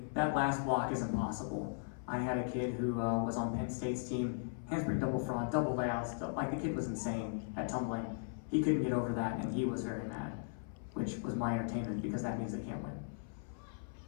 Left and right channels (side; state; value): right; silent; 53 dB below the other